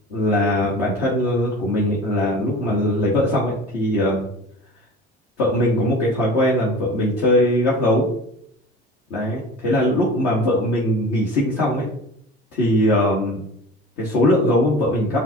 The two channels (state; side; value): normal; both; correlation 0.38